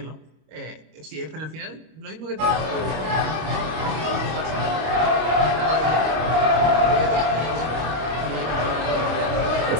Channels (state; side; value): late; left; 25 ms